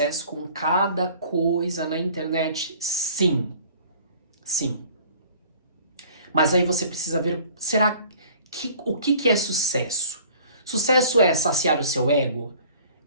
com cada coisa na internet. Sim. Sim. Mas aí você precisa ver, o que é sucesso? Sucesso é saciar o seu ego?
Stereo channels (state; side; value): inverted; both; correlation -0.51